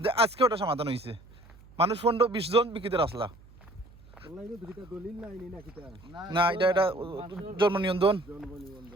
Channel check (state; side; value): noise; right; hum, 23 dB below the sound